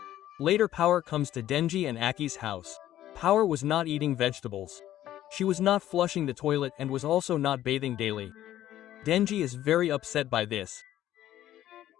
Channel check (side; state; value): right; quieter; 12.9 dB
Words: Later, Power comes to Denji and Aki's house. Power was not eating vegetables. She was not flushing the toilet and was also not bathing daily. Denji is very upset by this.